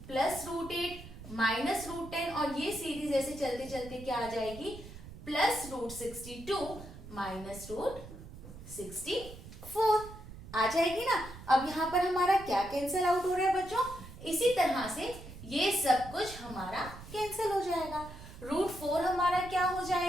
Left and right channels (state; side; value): noise; right; rumble, 15 dB below the sound